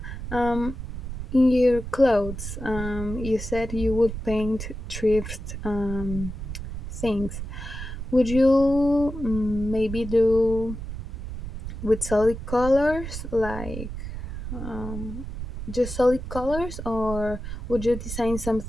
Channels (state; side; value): noise; right; rumble, 8 dB below the sound